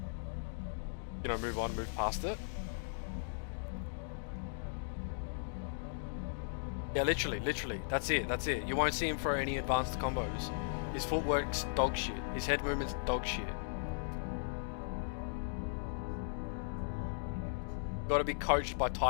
you know, move on, move past it. Yeah, literally. That's it. You won't see him throw any advanced combos. His footwork's dog shit. His head movement's dog shit. Got to be coached by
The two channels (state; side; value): silent; right; digital silence